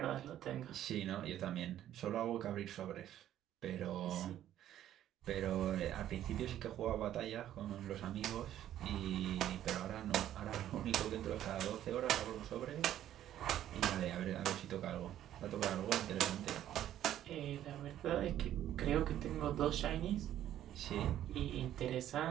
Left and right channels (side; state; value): left; quieter; 11.9 dB